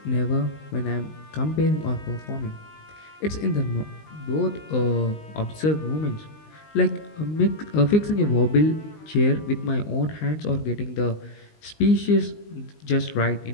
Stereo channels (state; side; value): late; right; 19 ms